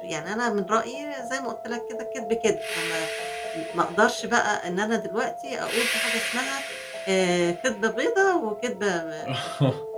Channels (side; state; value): both; identical; correlation 1.00